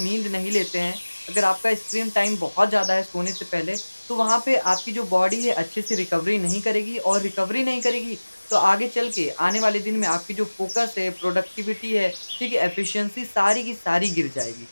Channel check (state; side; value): inverted; both; correlation -1.00